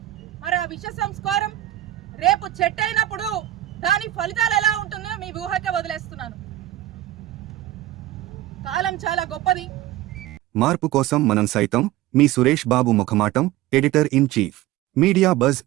మరి ఆ విష సంస్కారం రేపు చెట్టు అయినప్పుడు దాని ఫలితాలు ఎలా ఉంటుందో మీ ఊహకే వదిలేస్తున్నాను. కాలం చాలా గొప్పది. మార్పు కోసం మనం సైతం. మీ Suresh Babu ముఖమాటం, editor in chief, media buzz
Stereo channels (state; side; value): quieter; left; 14.7 dB